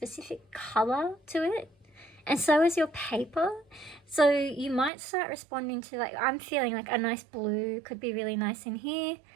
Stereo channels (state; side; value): drops out; left; at 4.9 s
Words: color to it, and so is your paper. So you might start responding to, like, I'm feeling like a nice blue could be really nice in here.